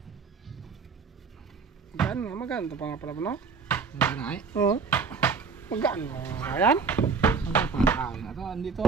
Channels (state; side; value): quieter; left; 5.2 dB